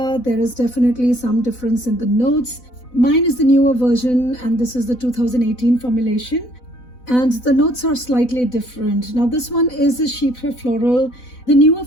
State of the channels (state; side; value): late; right; 4.0 ms